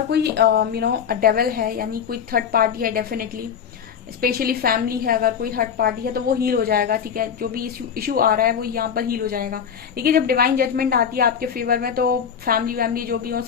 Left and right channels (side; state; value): right; quieter; 7.6 dB